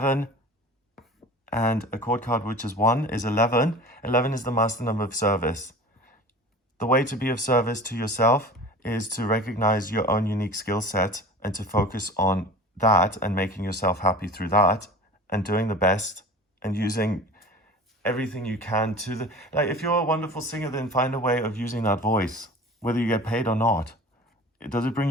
and a chord card which is 1 is 11. 11 is the master number of service. The way to be of service to yourself is to recognize your own unique skill set and to focus on that and making yourself happy through that and doing the best and using everything you can to like, if you're a wonderful singer, then find a way of using that voice, whether you get paid or not. Does it bring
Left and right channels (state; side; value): normal; both; correlation 0.39